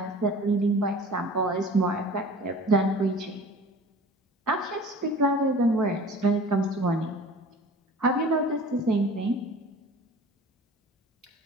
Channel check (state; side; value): normal; both; correlation 0.43